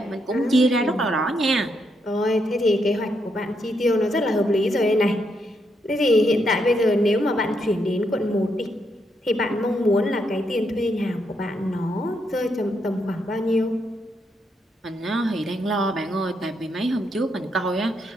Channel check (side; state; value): both; normal; correlation 0.78